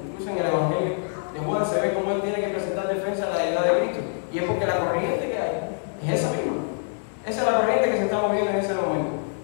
incluso en el Evangelio de Juan se ve cómo él tiene que presentar defensa a la deidad de Cristo. Y es porque la corriente que hay es esa misma. Esa es la corriente que se está moviendo en ese momento.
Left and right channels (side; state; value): right; silent; 62 dB below the other